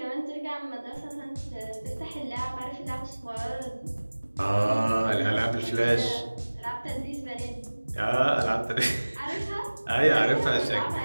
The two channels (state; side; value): inverted; both; correlation -1.00